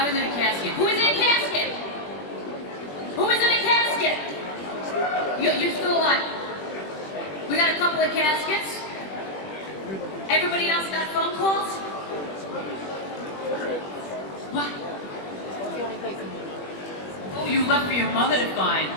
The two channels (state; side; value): late; right; 21 ms